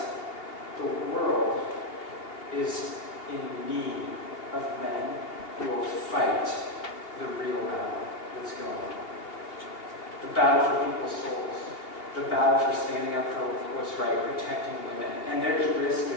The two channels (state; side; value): late; right; 2.8 ms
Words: the world is in need of men who will fight the real battle that's going on. The battle for people's souls. The battle for standing up for what's right, protecting women. And there's risk